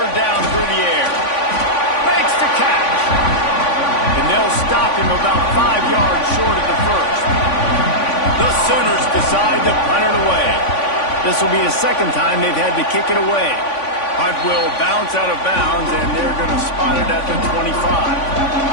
down through the air. Makes the catch. And they'll stop him about 5 yards short of the first. The Sooners decide to punt it away. This will be the second time they've had to kick it away. Punt will bounce out of bounds, and they're going to spot it at the 25.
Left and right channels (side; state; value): right; late; 3.5 ms